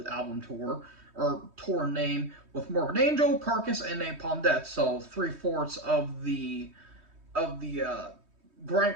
album tour, or tour name, with Morbid Angel, Carcass, and Napalm Death. So 3/4 of the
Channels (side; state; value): left; late; 3.2 ms